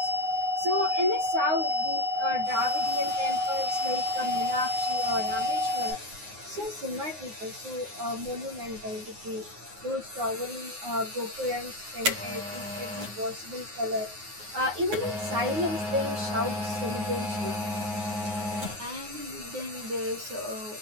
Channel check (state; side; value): late; left; 9.6 ms